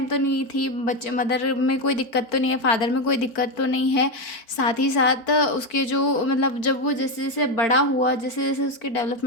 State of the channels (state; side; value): late; right; 4.5 ms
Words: तो नहीं थी, बच्चे मदर में कोई दिक्कत तो नहीं है, फादर में कोई दिक्कत तो नहीं है। साथ ही साथ उसके जो मतलब जब वो जैसे जैसे बड़ा हुआ, जैसे जैसे उसके